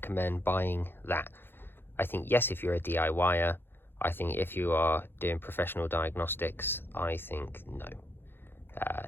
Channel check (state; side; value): late; right; 0.10 ms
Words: buying that? I think yes, if you're a DIYer. I think if you are doing professional diagnostics, I think no.